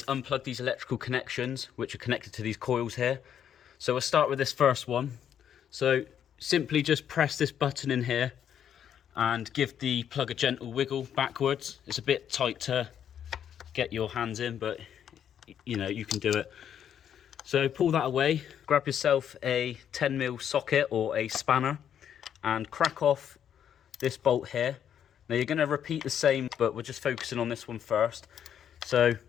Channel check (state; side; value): quieter; right; 9.2 dB